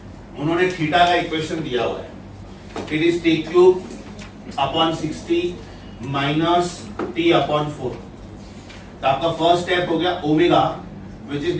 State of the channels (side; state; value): both; identical; correlation 1.00